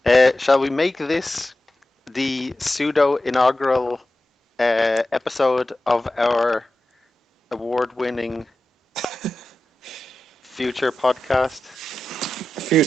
Shall we make this the pseudo inaugural episode of our award-winning future podcast?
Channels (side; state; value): both; normal; correlation 0.93